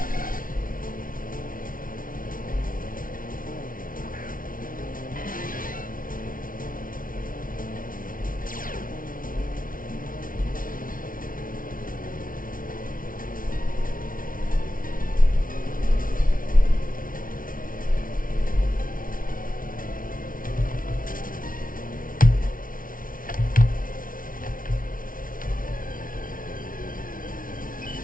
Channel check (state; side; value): late; right; 0.40 ms